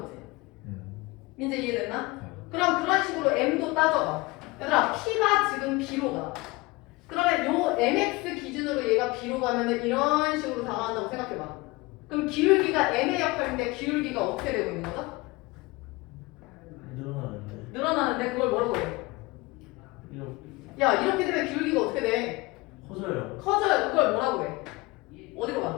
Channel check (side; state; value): right; quieter; 22.9 dB